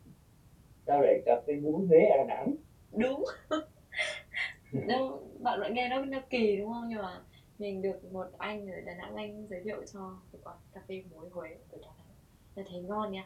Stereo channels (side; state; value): both; identical; correlation 1.00